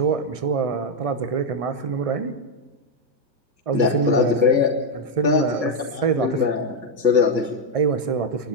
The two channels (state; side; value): late; left; 1.6 ms